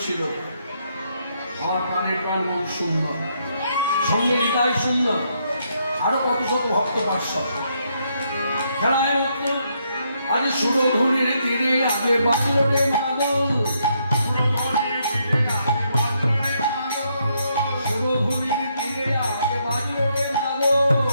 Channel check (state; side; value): inverted; both; correlation -0.75